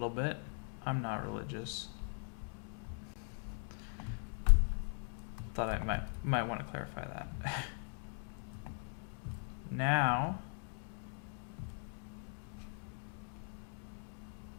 bit. I'm not religious. Thought I might want to clarify that. Now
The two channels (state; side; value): silent; right; 51 dB below the other